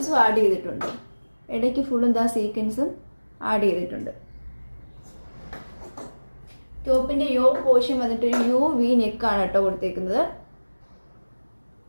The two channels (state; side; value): inverted; both; correlation -1.00